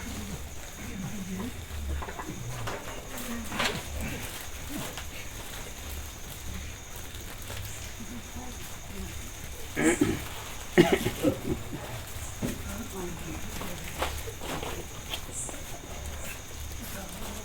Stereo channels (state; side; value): identical; both; correlation 1.00